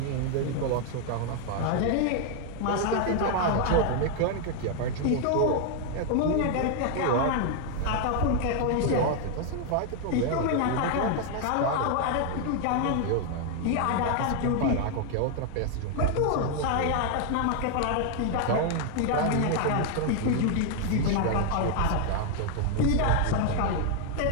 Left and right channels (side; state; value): both; different; correlation 0.00